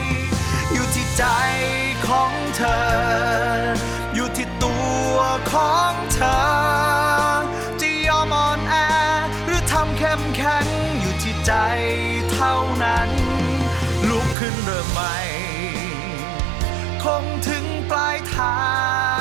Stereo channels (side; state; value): left; drops out; at 14.4 s